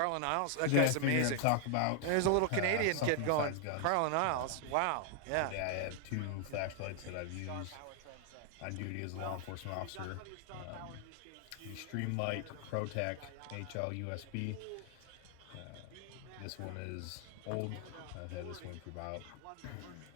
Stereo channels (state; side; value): different; both; correlation 0.00